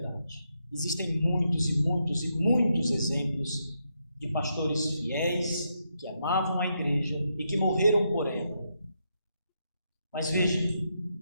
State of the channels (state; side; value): inverted; both; correlation -0.81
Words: Existem muitos e muitos e muitos exemplos de pastores fiéis que amavam a igreja e que morreram por ela. Mas veja,